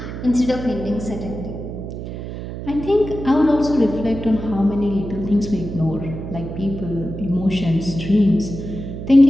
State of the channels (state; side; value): noise; right; hum, 8 dB below the sound